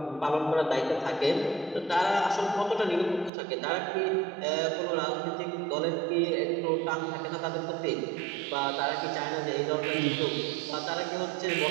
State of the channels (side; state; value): left; drops out; at 3.3 s